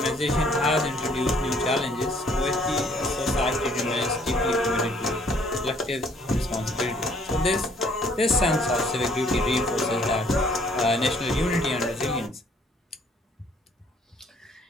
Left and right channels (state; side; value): normal; both; correlation 0.62